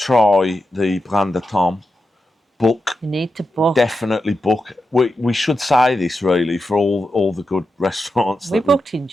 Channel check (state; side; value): normal; both; correlation 0.89